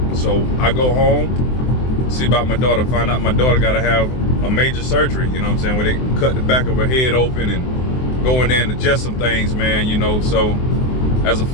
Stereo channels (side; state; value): right; late; 23 ms